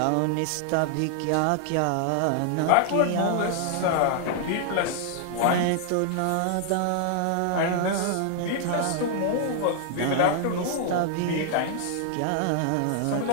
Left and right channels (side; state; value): both; different; correlation -0.01